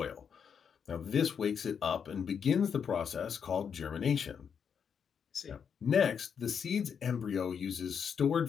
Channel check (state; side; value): quieter; right; 7.1 dB